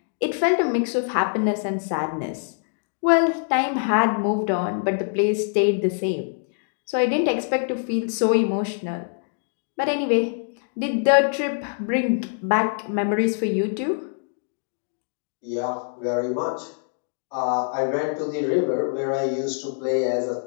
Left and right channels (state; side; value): silent; right; digital silence